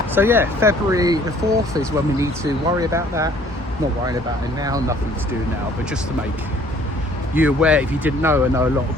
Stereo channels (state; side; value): normal; both; correlation 0.57